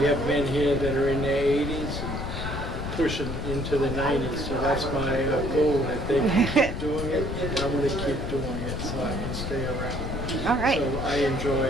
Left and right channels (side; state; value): left; noise; rumble, 5 dB below the sound